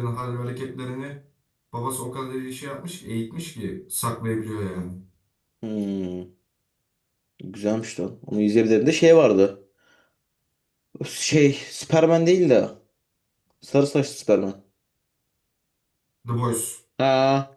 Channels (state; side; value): identical; both; correlation 1.00